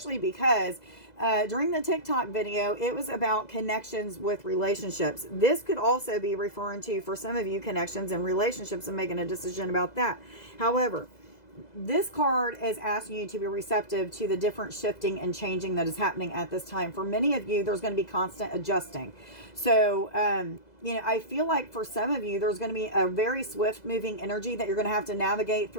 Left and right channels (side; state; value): right; late; 2.0 ms